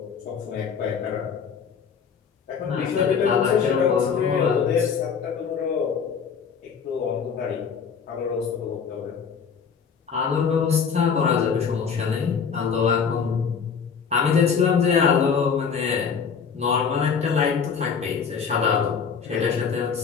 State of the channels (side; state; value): right; quieter; 6.4 dB